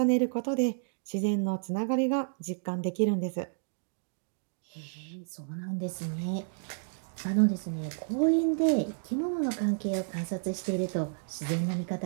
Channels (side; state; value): left; silent; digital silence